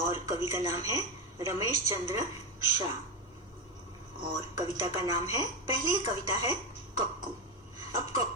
कवि का नाम है रमेश चंद्र शाह और कविता का नाम है, पहली कविता है कक्कू। अब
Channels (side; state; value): both; normal; correlation 0.12